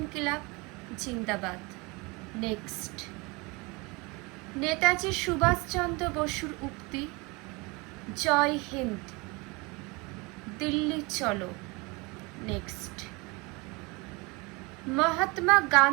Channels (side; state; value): left; quieter; 26.6 dB